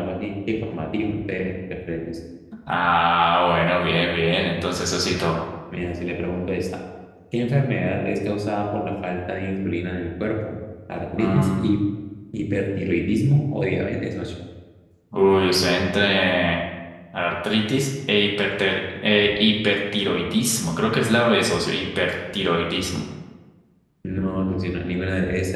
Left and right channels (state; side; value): identical; both; correlation 1.00